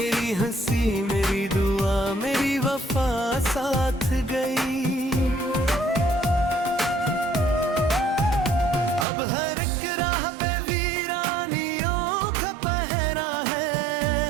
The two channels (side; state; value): left; drops out; at 9.1 s